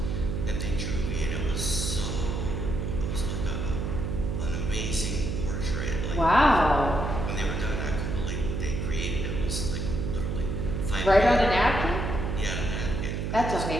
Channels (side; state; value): right; noise; hum, 2 dB below the sound